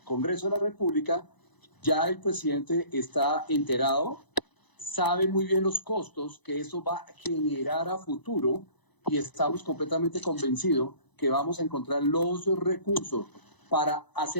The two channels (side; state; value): right; late; 1.0 ms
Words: Congreso de la República, ya el presidente está enterado, sabe muy bien los costos que eso va a generar a futuro, y estamos completamente convencidos que vamos a encontrar los recursos para